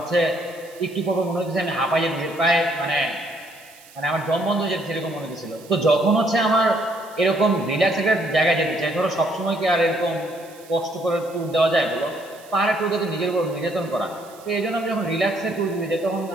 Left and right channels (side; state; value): right; noise; hiss, 23 dB below the sound